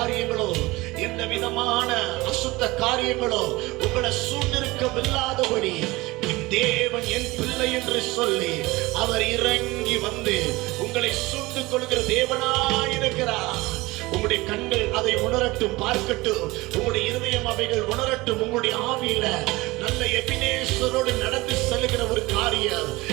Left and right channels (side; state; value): left; quieter; 21.3 dB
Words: எந்த விதமான அசுத்த காரியங்களோ உங்களை சூழ்ந்திருக்கவில்லாதபடி என் தேவன் என் பிள்ளை என்று சொல்லி அவர் இறங்கி வந்து உங்களை சூழ்ந்து கொள்கிற தேவனாயிருக்கிறார். உங்களுடைய கண்கள் அதை உணரட்டும், பார்க்கட்டும். உங்களுடைய இருதயம் அவைகள் உணரட்டும். உங்களுடைய ஆவியில நல்ல எபினேசரோடு நடந்து செல்லுகிற ஒரு காரியம்